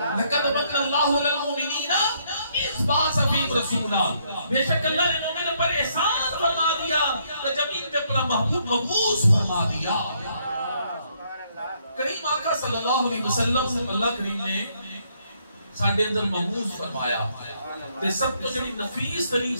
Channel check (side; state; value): both; inverted; correlation -0.71